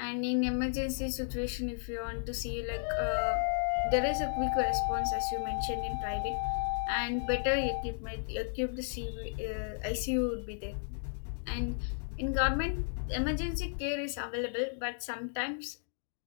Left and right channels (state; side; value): silent; right; digital silence